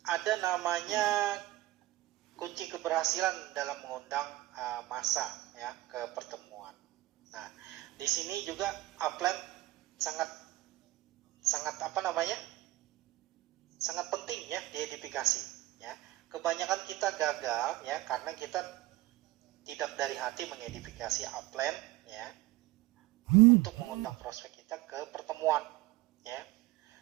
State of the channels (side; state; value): left; quieter; 17.9 dB